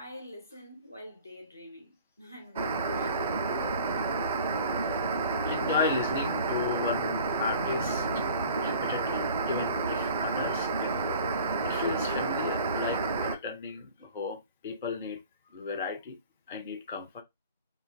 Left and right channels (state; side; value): inverted; both; correlation -0.45